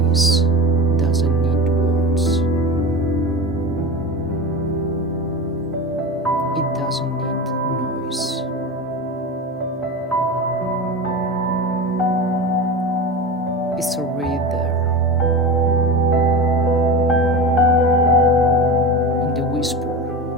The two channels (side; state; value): both; normal; correlation 0.28